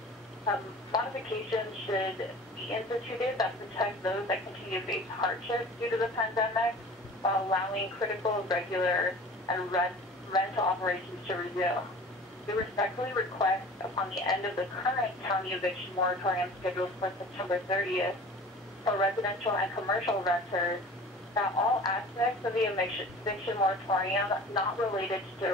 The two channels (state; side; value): normal; both; correlation 0.42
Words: Modifications should be instituted that protect those that continue to face hardships due to the pandemic while allowing critical, regular, and rental operations to resume. We respectfully request, upon the end of the current county eviction moratorium scheduled for September 30th, for residential and commercial renters, that all aspects of the eviction moratorium not related to